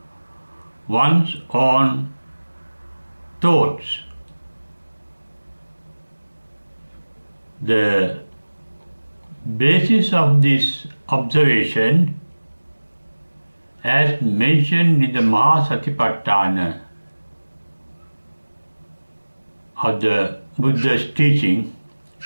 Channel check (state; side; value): inverted; both; correlation -1.00